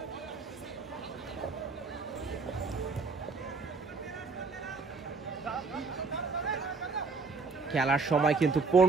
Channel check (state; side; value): quieter; left; 4.4 dB